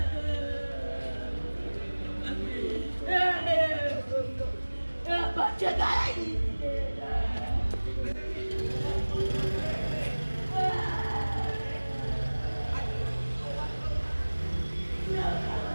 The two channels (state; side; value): inverted; both; correlation -1.00